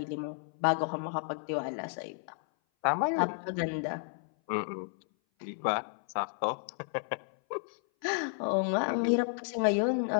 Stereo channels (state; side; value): silent; right; 56 dB below the other